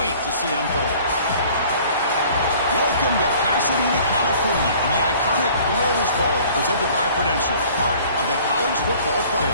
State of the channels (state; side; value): inverted; both; correlation -0.51